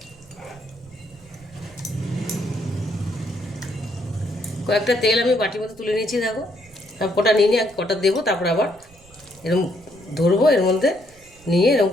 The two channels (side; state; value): right; noise; rumble, 26 dB below the sound